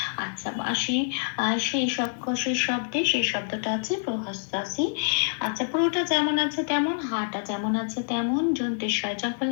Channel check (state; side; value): silent; right; 56 dB below the other